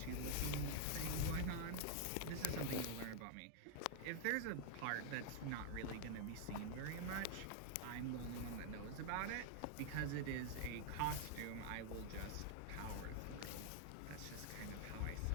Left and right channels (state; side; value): different; both; correlation 0.00